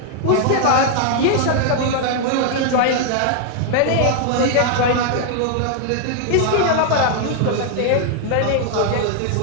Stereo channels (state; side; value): different; both; correlation 0.00